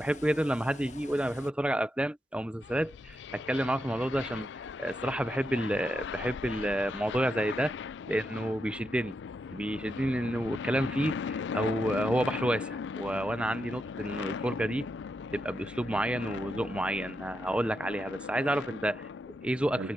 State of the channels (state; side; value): normal; both; correlation 0.84